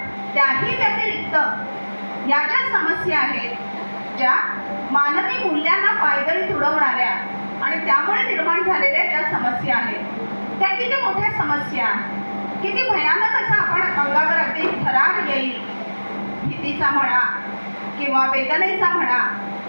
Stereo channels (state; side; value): inverted; both; correlation -1.00